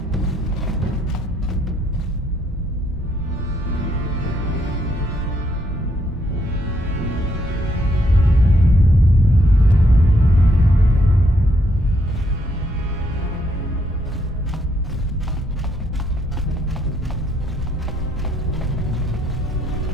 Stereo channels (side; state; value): both; normal; correlation 0.73